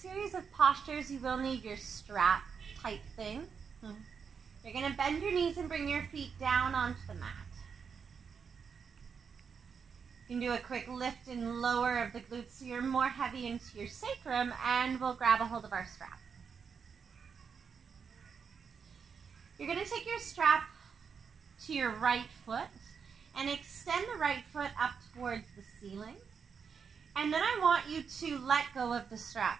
series of postures, you will need your strap type thing. You're going to bend your knees and bring your feet down onto the mat. You can do a quick lift and lower of the glutes so you're more heavy into your sacrum, and we'll grab a hold of our strap. You're going to take your strap to your right foot and extend the right foot up towards the ceiling. And then I want you to let go of the strap.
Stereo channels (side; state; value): left; quieter; 6.4 dB